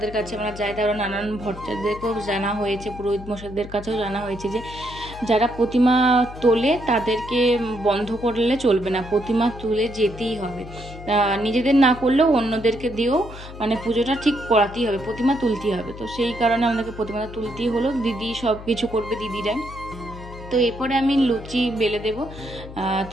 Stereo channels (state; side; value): noise; left; hum, 14 dB below the sound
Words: কাছে আমরা যাই, তারা নানান ভট্টাচার্যদেরকেও জানা হয়েছে, পুরোহিত মশাইদের কাছেও জানা হয়েছে যে যারা প্রতিমা তোলে তাদেরকে বন্ধ করলে চলবে না, প্রতিমা তুলে যেতেই হবে। নিজেদের না করলেও অন্যদেরকে দিয়েও মানে পুজোটা ঠিক করাতেই হবে, প্রতিমা তুলতেই হবে। তো সেই কারণে আমাদেরকে প্রতিমাটা তুলতেই হলো, দিদি সব কিছু করবে, দিদিরা। তো এরপরে আমি লুচি বেলে দেবো।